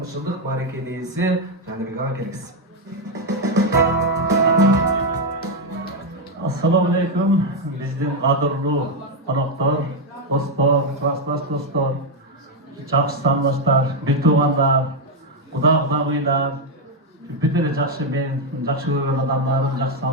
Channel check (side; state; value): both; normal; correlation 0.04